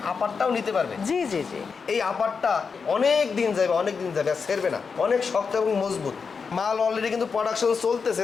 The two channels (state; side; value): quieter; right; 5.5 dB